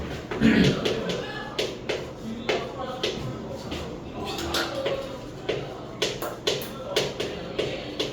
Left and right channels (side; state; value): both; identical; correlation 1.00